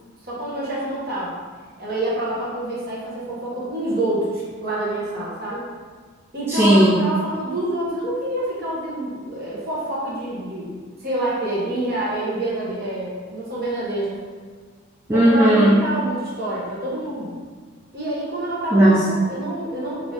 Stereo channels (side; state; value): both; normal; correlation 0.57